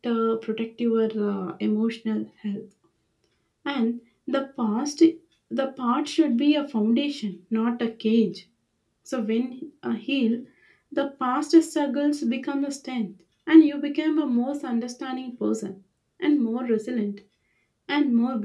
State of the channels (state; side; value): identical; both; correlation 1.00